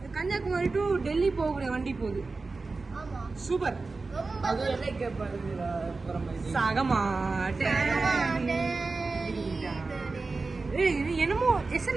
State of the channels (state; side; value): quieter; left; 3.8 dB